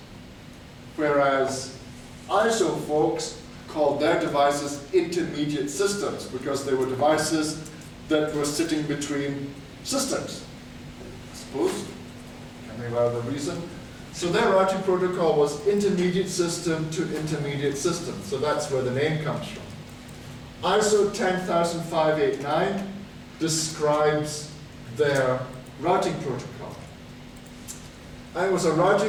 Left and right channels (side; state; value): both; identical; correlation 1.00